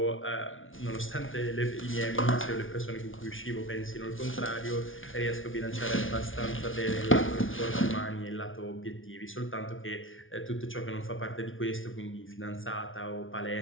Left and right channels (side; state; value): right; late; 0.57 ms